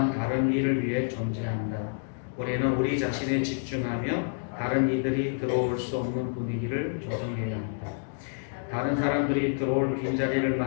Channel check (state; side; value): silent; right; digital silence